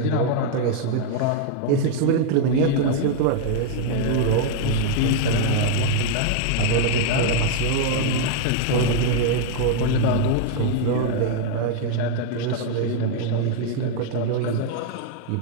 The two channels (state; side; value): different; both; correlation 0.00